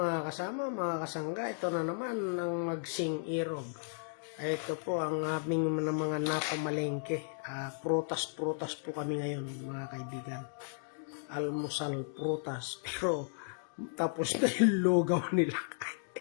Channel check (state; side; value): silent; right; digital silence